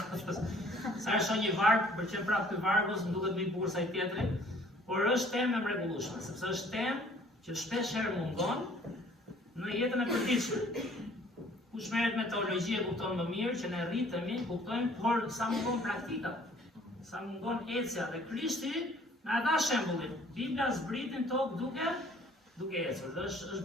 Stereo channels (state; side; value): normal; both; correlation 0.55